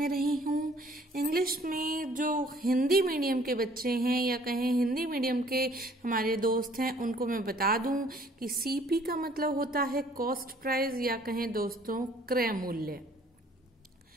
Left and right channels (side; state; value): both; normal; correlation 0.58